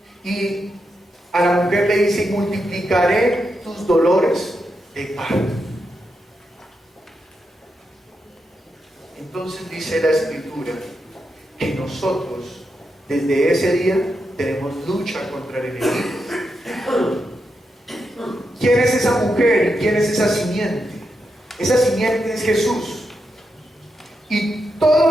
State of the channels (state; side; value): normal; both; correlation 0.85